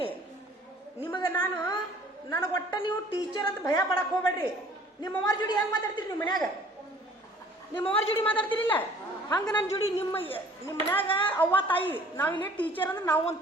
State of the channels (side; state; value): both; normal; correlation 0.53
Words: ನಿಮಗೆ ನನಗೆ ಒಟ್ಟ ನೀವು ಟೀಚರ್ ಅಂತ ಭಯ ಪಡಕ್ಕೆ ಹೋಗ್ಬೇಡ್ರಿ. ನಿಮ್ಮ ಅವ್ರ ಜೋಡಿ ಹೆಂಗೆ ಮಾತಾಡ್ತೀರಿ ನಿಮ್ಮ ಮನ್ಯಾಗ? ನಿಮ್ಮ ಅವ್ರ ಜೋಡಿ ಮಾತಾಡ್ತಿರಿಲ್ಲ ಹಂಗೆ ನನ್ನ ಜೋಡಿ. ನಿಮ್ಮ ಮನ್ಯಾಗ ಅವ್ವ ತಾಯಿ, ನಾವಿಲ್ಲೇ ಟೀಚರ್ ಅಂದ್ರೆ ನಾವು ಒಂದು